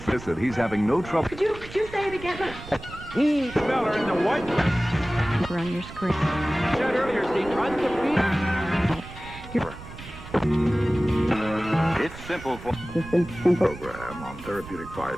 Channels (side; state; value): right; noise; rumble, 15 dB below the sound